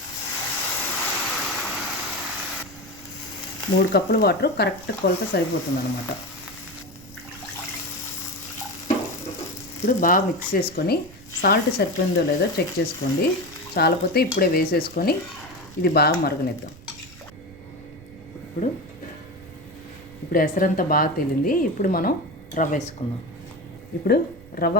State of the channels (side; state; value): right; noise; rumble, 20 dB below the sound